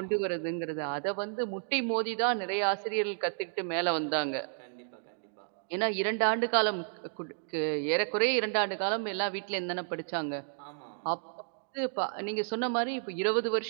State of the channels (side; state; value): left; silent; digital silence